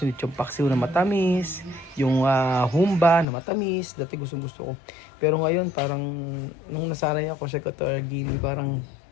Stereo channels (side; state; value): right; drops out; at 3.2 s